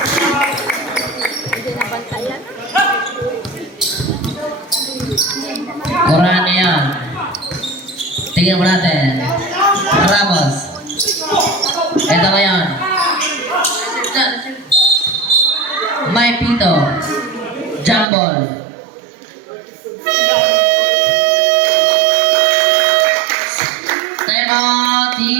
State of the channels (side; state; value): left; drops out; at 18.1 s